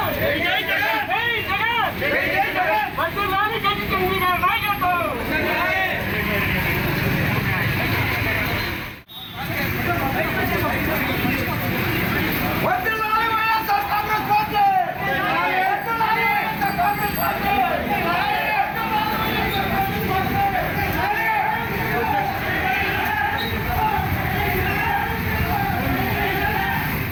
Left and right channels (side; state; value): both; identical; correlation 1.00